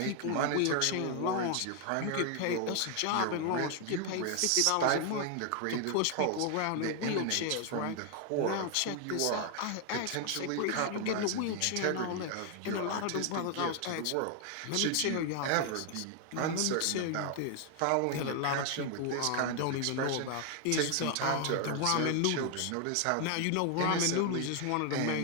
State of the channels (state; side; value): different; both; correlation 0.00